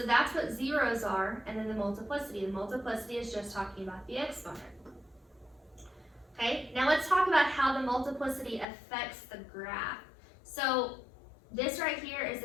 that's what zeros are, and then the multiplicity. The multiplicity is just talking about the exponent. Okay, now let's talk about how the multiplicity affects the graph. So this right here is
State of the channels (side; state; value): right; drops out; at 8.7 s